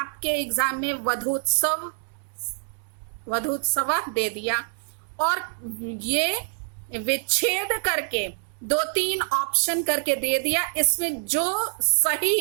एग्जाम में वधूत्सव, वधूत्सव दे दिया और ये विच्छेद करके दो तीन ऑप्शन करके दे दिया, इसमें जो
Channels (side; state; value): left; silent; 61 dB below the other